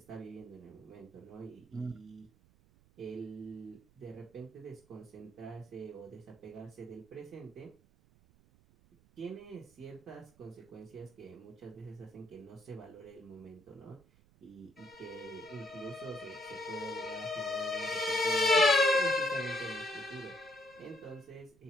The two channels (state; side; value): noise; right; rumble, 28 dB below the sound